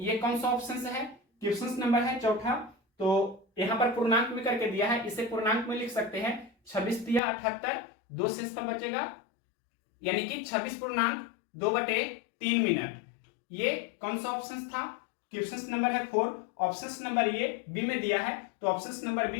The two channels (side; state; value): right; drops out; at 7.2 s